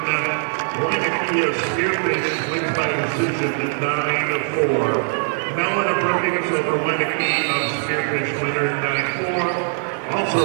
Weineke of Spearfish wins by decision 9-4. Mellon of Brookings over Weineke of Spearfish winner 9-4.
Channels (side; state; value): left; silent; 61 dB below the other